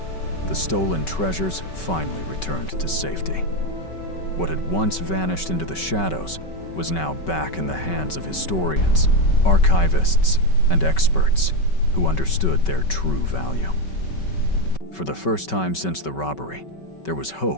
the stolen treasures finally returned to safety. What had once vanished into the shadows was now back in the hands of historians, archivists, and experts who understood their true value. For the first time since the robbery, there was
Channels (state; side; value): late; right; 5.3 ms